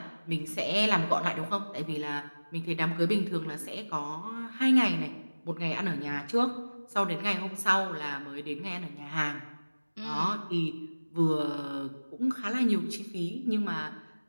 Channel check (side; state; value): both; inverted; correlation -1.00